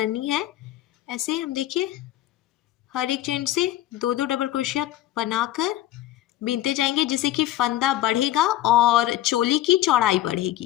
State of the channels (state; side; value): quieter; right; 13.9 dB